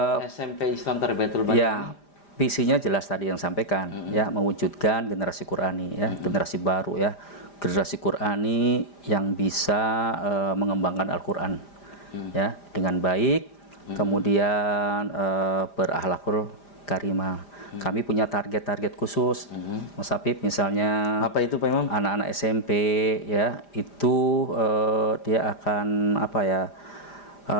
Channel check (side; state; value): right; late; 5.0 ms